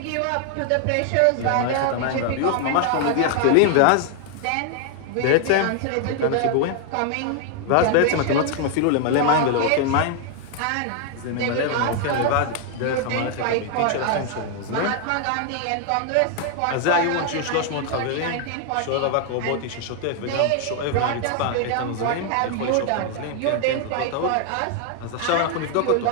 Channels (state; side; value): different; both; correlation 0.00